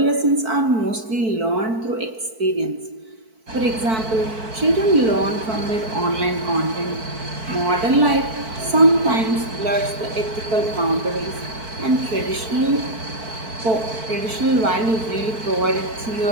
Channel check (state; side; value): late; left; 4.5 ms